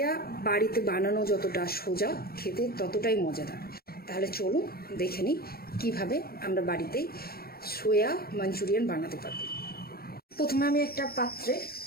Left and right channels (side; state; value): right; late; 0.44 ms